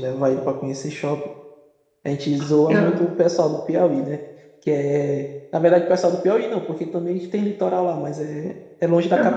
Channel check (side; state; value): both; identical; correlation 1.00